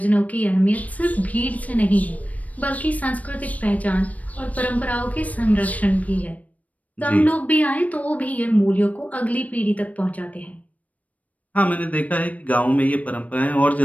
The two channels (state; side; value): late; right; 0.070 ms